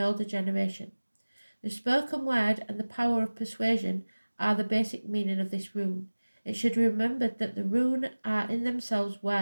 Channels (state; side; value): inverted; both; correlation -1.00